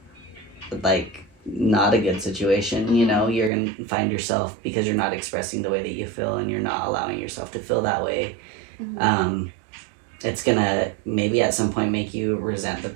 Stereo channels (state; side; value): drops out; left; at 3.5 s